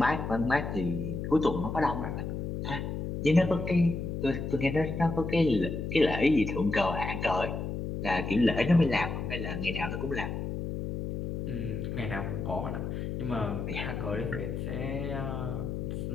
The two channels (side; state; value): left; noise; hum, 4 dB below the sound